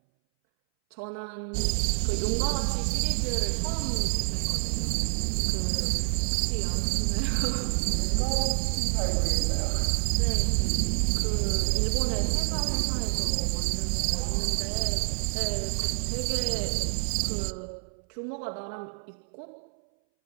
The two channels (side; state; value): left; silent; 60 dB below the other